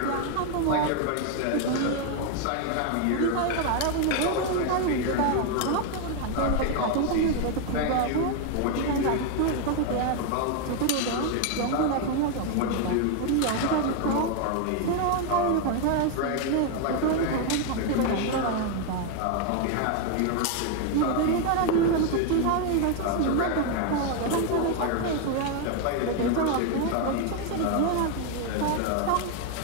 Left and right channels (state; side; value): different; both; correlation 0.01